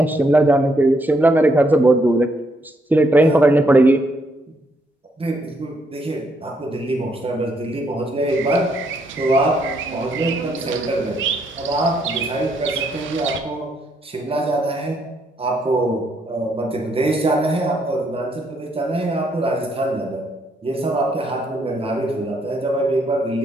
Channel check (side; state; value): both; normal; correlation 0.74